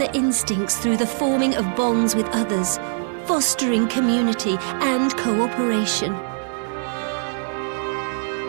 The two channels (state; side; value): silent; left; digital silence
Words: instincts through the forming of bonds with others, fostering community and cooperation.